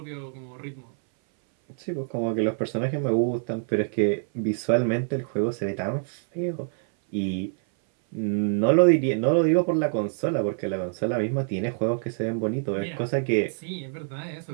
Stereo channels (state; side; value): silent; left; 58 dB below the other